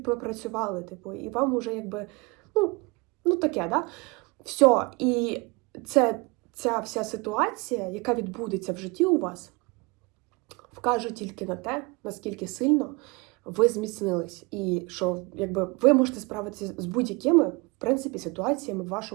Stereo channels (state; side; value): quieter; left; 27.5 dB